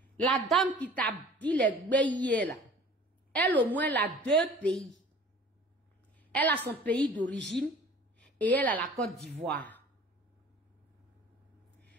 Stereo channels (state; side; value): normal; both; correlation 0.46